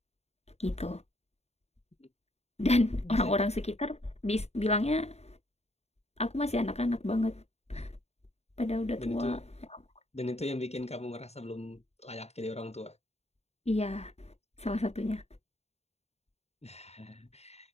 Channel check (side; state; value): right; late; 0.31 ms